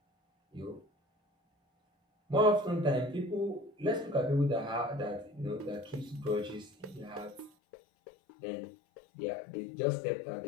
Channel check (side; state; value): right; drops out; at 7.5 s